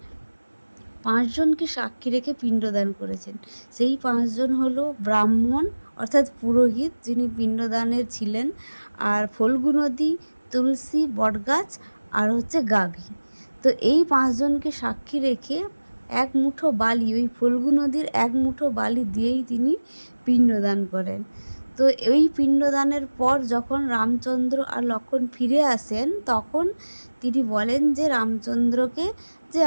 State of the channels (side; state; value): both; inverted; correlation -1.00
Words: 5 জনকে সাক্ষী রেখে পিণ্ডদান করেছেন। সেই 5 জন হলো ব্রাহ্মণ অর্থাৎ পুরোহিত, যিনি পিণ্ডদানের ছিলেন, আর ফল্গু নদী, তুলসী, বটগাছ আর হচ্ছে গাভী। তো এই 5 জনকে সাক্ষী রেখে এক মুঠো বালি, ওই ফল্গু নদীর এক মুঠো বালি দিয়েই তিনি পিণ্ডদান করেন। তো এই পিণ্ডদানের পর যখন রামচন্দ্র আর লক্ষ্মণ ফিরে আসেন তখন তিনি বলেন যে রামচন্দ্রকে যে